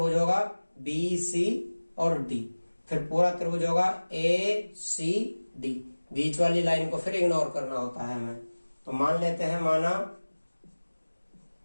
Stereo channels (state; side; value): inverted; both; correlation -1.00